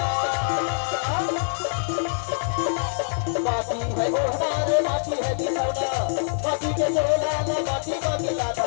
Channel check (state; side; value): silent; right; digital silence